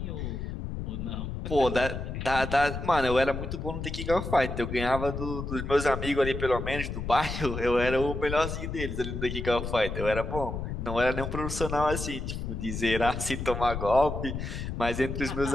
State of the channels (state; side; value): noise; left; rumble, 5 dB below the sound